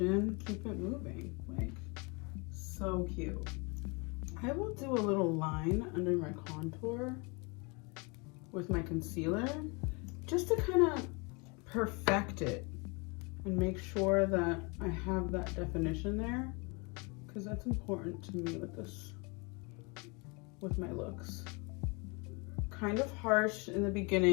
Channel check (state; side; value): quieter; right; 30.3 dB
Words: it moving. Like, so cute. I will do a little line under my contour with my concealer just to kind of perfect it and make sure that I have that definition there, because that's important to me with this, with my looks. Kind of harsh in the